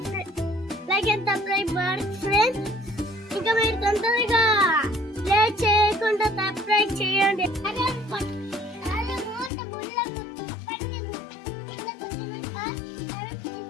Like and subscribe friends. ఇంకా మీరు తొందరగా లేట్ చేయకుండా సబ్స్క్రైబ్ చేయండి.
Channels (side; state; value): right; drops out; at 9.5 s